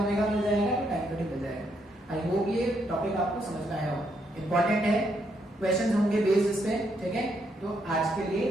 मिल जाएगा तो टाइम पीरियड मिल जाएगा। आई होप ये टॉपिक आपको समझ में आया हो, इंपॉर्टेंट है, क्वेश्चंस होंगे बेस्ड इस पे, ठीक है। तो आज के लिए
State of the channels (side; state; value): both; normal; correlation 0.76